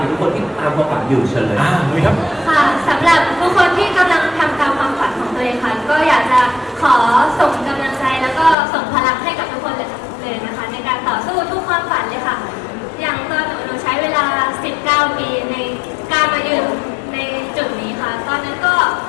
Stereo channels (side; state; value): right; drops out; at 8.6 s